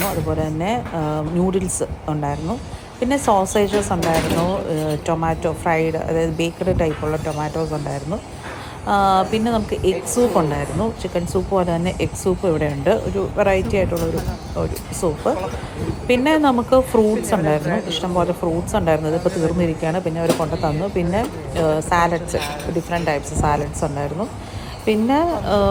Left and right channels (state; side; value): identical; both; correlation 1.00